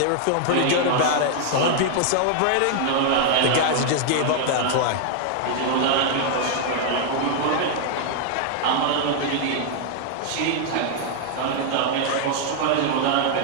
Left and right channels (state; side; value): different; both; correlation 0.00